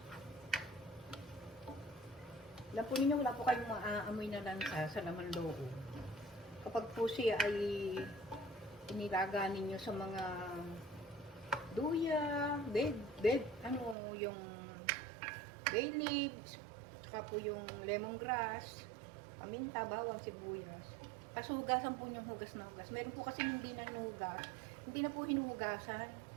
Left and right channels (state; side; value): drops out; left; at 14.0 s